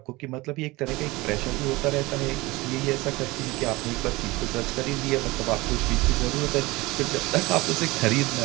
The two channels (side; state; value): left; quieter; 21.6 dB